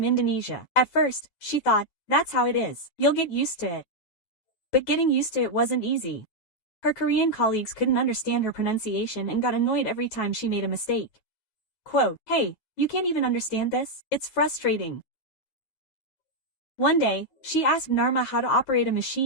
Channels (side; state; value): right; late; 9.3 ms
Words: Indonesia. At first, she thought, that's how it is. You'll get used to it. But getting used to it wasn't easy. Her Korean colleagues couldn't understand her pronunciation and got annoyed every time she made a mistake. Quote, "Hey, you can't even understand this? It's frustrating." One day, she asked Narma how to operate a